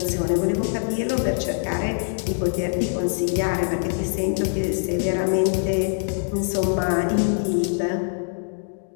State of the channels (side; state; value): right; silent; digital silence